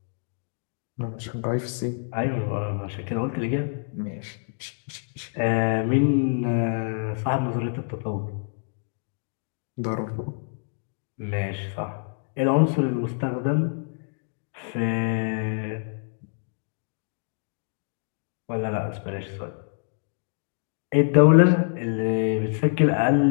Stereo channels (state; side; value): silent; right; digital silence